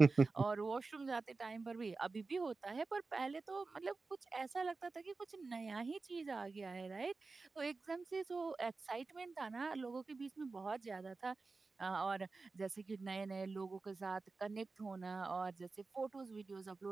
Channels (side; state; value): left; quieter; 3.9 dB